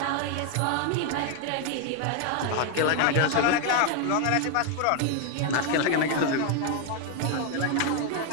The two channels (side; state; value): both; different; correlation 0.00